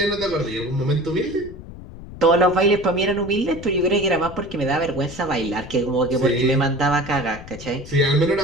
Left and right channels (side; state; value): left; noise; rumble, 14 dB below the sound